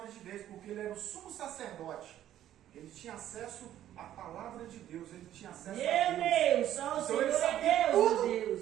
de Deus, porque ele era o sumo sacerdote. Ele tinha acesso à palavra de Deus, ele tinha acesso a Deus. Meu Deus, só o Então Senhor ele é sabia Deus, tudo meu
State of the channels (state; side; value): quieter; left; 12.0 dB